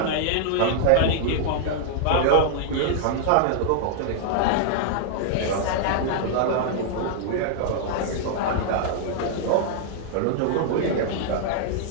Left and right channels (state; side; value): different; both; correlation -0.01